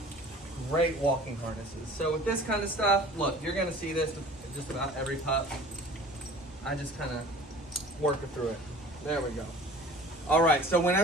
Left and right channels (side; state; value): both; normal; correlation 0.45